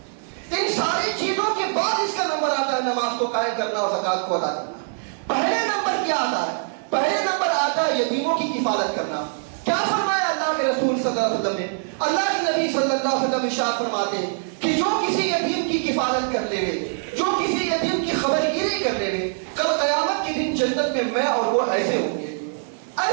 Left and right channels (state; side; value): silent; left; digital silence